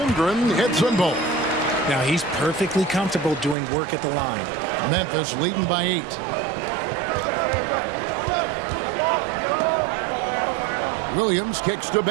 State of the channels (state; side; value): drops out; left; at 3.6 s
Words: hits them both. Now he's perfectly comfortable doing work at the line. Memphis leading by 8. Williams kicks to